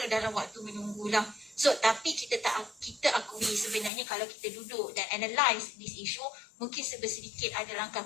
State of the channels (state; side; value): drops out; right; at 3.9 s